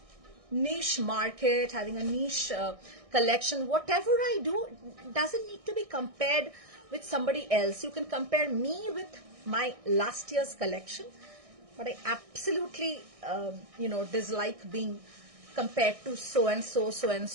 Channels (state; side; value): late; left; 1.6 ms